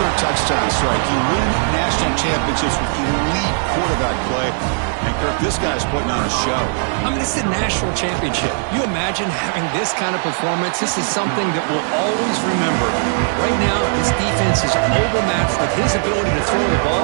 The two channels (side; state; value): left; silent; 67 dB below the other